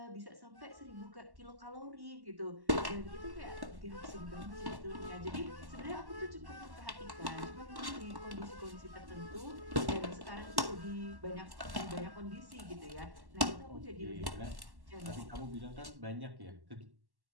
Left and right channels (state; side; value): late; left; 1.1 ms